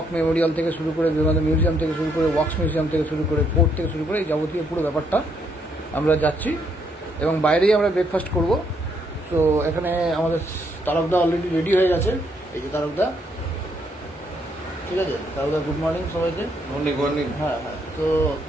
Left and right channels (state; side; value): normal; both; correlation 0.73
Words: মেমোরিয়াল থেকে শুরু করে, বিবেকানন্দ মিউজিয়াম থেকে শুরু করে, ওয়াক্স মিউজিয়াম থেকে শুরু করে, পোর্ট থেকে শুরু করে, এই যাবতীয় পুরো ব্যাপারটা আমরা যাচ্ছি, এবং বাইরেই আমরা ব্রেকফাস্ট করব। তো এখানে আমাদের তারকদা অলরেডি রেডি হয়ে গেছে। এই যে তারকদা, ঠিক আছে, তাহলে গুড মর্নিং সবাইকে। Morning morning. হ্যাঁ হ্যাঁ, তো